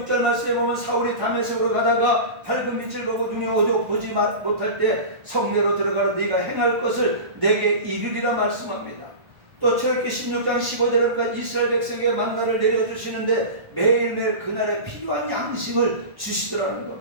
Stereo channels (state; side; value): late; left; 1.5 ms